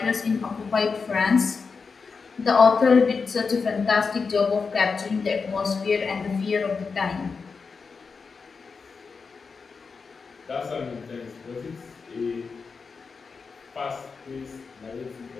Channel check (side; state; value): right; quieter; 5.0 dB